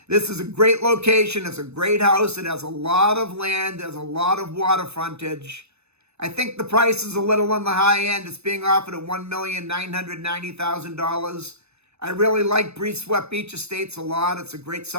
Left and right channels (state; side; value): late; left; 0.80 ms